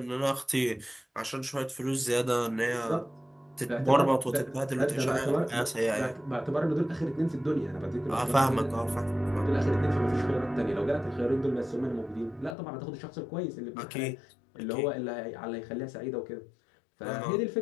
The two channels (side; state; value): right; drops out; at 12.6 s